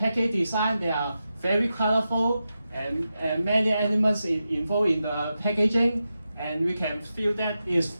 design, they are very colorful and many elements involved in the packaging, and we can feel that it's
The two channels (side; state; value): both; inverted; correlation -0.89